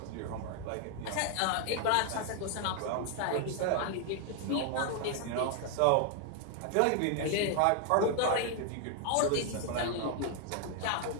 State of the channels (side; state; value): both; different; correlation 0.00